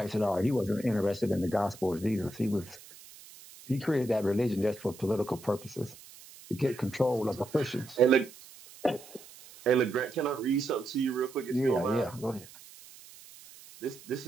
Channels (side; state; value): right; noise; hiss, 20 dB below the sound